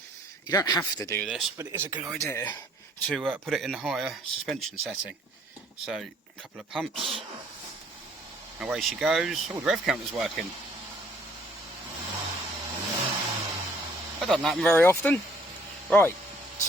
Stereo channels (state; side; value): normal; both; correlation 0.60